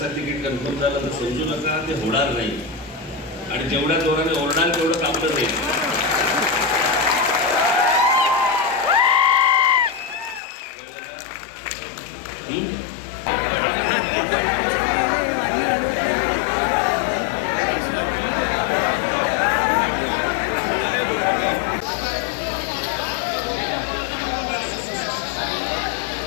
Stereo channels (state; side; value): drops out; right; at 10.4 s